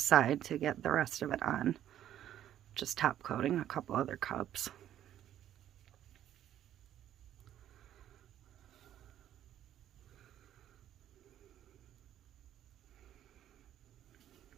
to get the rest of it on. Just top coating a couple other cups.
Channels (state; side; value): quieter; left; 11.3 dB